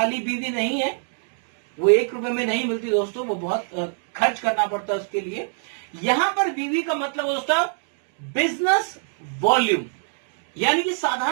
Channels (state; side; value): silent; left; 63 dB below the other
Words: बीवी नहीं है, वो 1 रुपए में नहीं मिलती दोस्तों, वो बहुत खर्च करना पड़ता है उसके लिए। यहां पर बीवी का मतलब दोस्तों बिजनेस वॉल्यूम, यानी कि